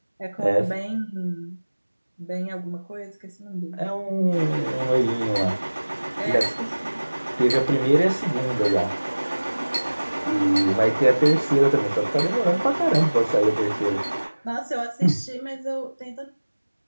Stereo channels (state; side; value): inverted; both; correlation -1.00